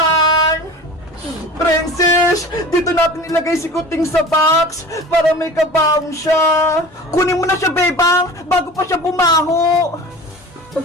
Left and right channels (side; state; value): both; normal; correlation 0.38